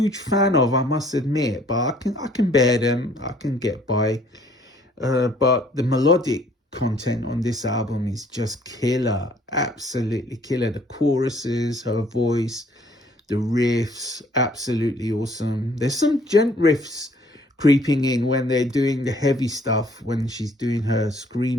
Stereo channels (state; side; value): normal; both; correlation 0.60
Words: fan of, I must admit, but I can bear them. I can get by. But the melodic content on this album is just killer, absolutely killer. The choruses, her voice, the riffs, absolutely awesome. There's some gent riffs creeping in when they're doing the heavy stuff, when she's doing her